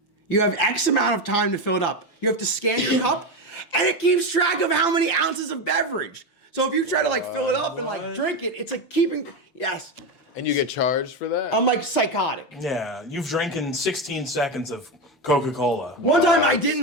You have X amount of time to fill it up. You have to scan your cup, and it keeps track of how many ounces of beverage. So if you try to like fill it up and like drink it, it's like keeping, yes. And you get charged for that? I'm like psychotic. Yeah, you've drinking 16 seconds of Coca-Cola. One time I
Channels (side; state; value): both; normal; correlation 0.14